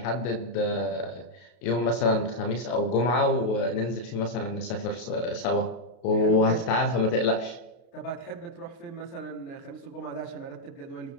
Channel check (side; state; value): right; late; 32 ms